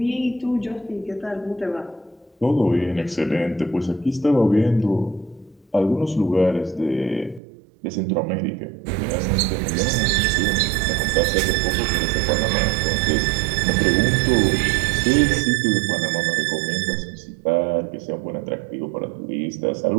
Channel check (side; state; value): left; drops out; at 7.4 s